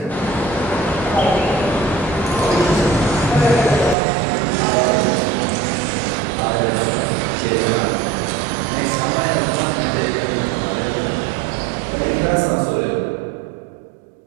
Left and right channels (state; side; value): drops out; left; at 4.0 s